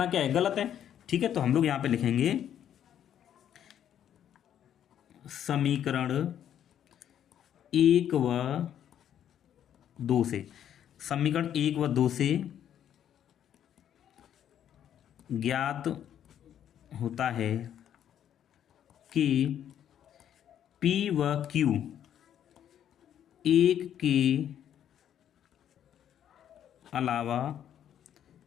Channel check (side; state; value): right; quieter; 10.0 dB